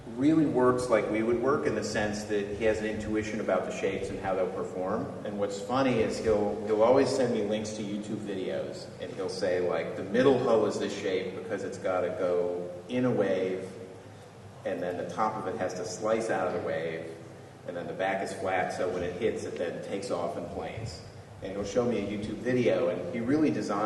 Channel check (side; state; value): both; identical; correlation 1.00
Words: really works like we would work in the sense that he has an intuition about the shapes and how they'll perform. And what's funny is he'll always send me links to YouTube videos, and he'll say, like, the middle hull is this shape because it's got to go in a wave, and then the top of it has to slice out of the wave, and then the back is flat, so when it hits, it then takes off in planes. And he'll show me a YouTube video, and he really